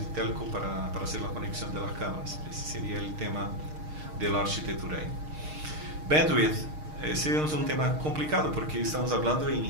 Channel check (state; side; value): late; left; 6.5 ms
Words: telco para hacer la conexión de las cámaras. Ese sería el tema de la arquitectura ahí. Bandwidth, ese es un tema complicado porque estamos hablando en